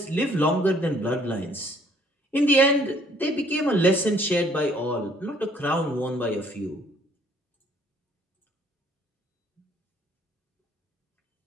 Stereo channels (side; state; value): both; normal; correlation 0.61